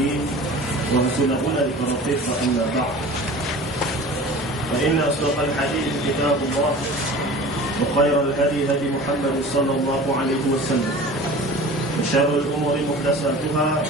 wa rasuluna likarafih wa anna ba'd. Fa inna asdaqal hadith kitabullah wa khairal hadi hadi Muhammad sallallahu alaihi wasallam wa syarrul umuri muhdatsatuha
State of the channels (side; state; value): both; normal; correlation 0.40